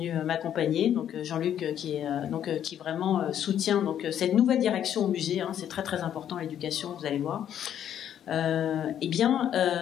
m'accompagner. Donc Jean-Luc, qui vraiment soutient donc cette nouvelle direction au musée. C'est très très important l'éducation. Vous allez voir.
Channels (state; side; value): quieter; right; 10.0 dB